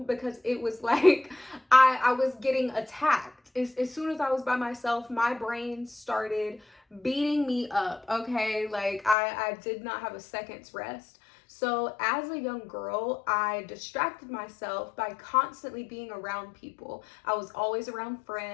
because it was like I was getting attacked. As soon as I was by myself, my brain started beating me up, okay? Like I did not have a second's rest. So as a young girl, I distracted myself by constantly being around people. I was always around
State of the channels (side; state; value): right; drops out; at 9.2 s